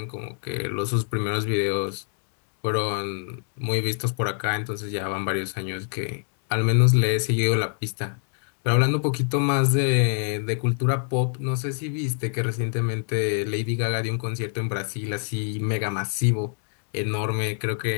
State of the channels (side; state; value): right; silent; 58 dB below the other